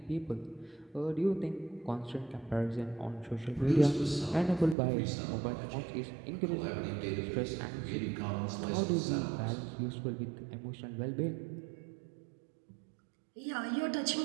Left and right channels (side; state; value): left; drops out; at 4.8 s